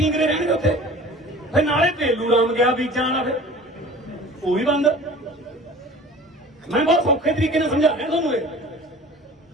रहणगे उत्थे। फिर नाले तेलू राम गया बीजा वाला, फिर वो भी बंद। मैं बहुत सौखे तरीके से समझा रहा तुहानूं।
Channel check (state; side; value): normal; both; correlation 0.43